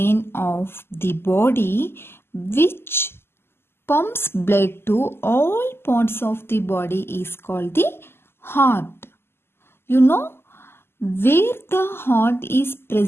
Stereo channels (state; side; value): late; right; 0.12 ms